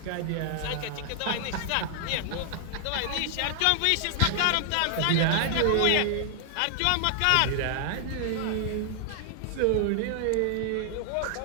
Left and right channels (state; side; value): different; both; correlation 0.00